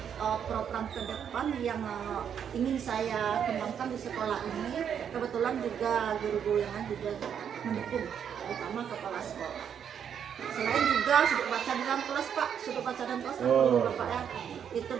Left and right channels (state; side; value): quieter; left; 8.2 dB